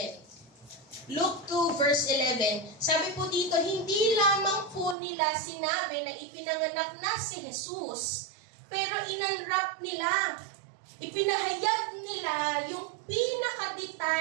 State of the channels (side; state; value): left; drops out; at 5.0 s